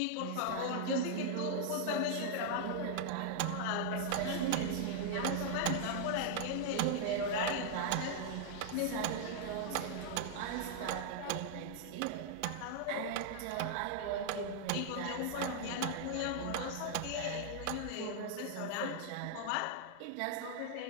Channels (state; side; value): different; both; correlation -0.01